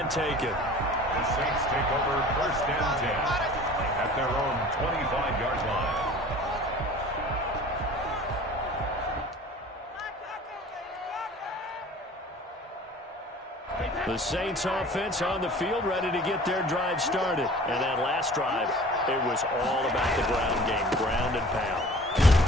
taken. The Saints take over first and 10 at their own 25-yard line. The Saints offense on the field ready to get their drive started. And that last drive, it was all about the ground game, ground and pound.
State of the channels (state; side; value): normal; both; correlation 0.45